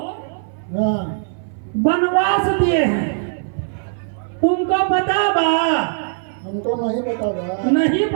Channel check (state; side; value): silent; left; 60 dB below the other